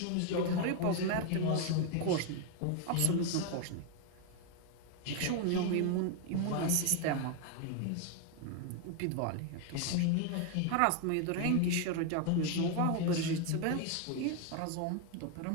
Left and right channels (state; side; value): different; both; correlation 0.01